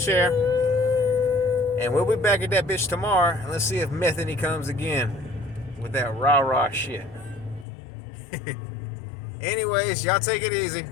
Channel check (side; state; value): right; drops out; at 7.7 s